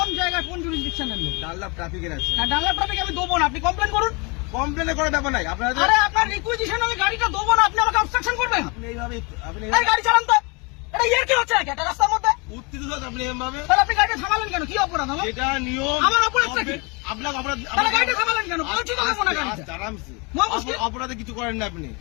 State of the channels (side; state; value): right; quieter; 30.0 dB